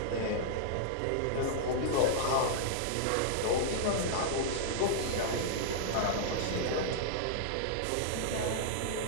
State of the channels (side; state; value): both; different; correlation -0.02